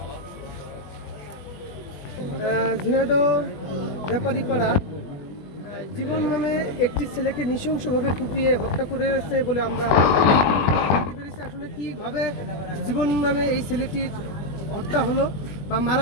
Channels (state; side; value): late; right; 21 ms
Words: ঝিনাইদহ ব্যাপারীপাড়া জীবন নামে একটি ছেলেকে নৃশংসভাবে কুপিয়ে হত্যা করেছে বলে আমরা জানতে পেরেছি। আসলে কীভাবে জীবন নামে এই ছেলেটির হত্যা হলো বা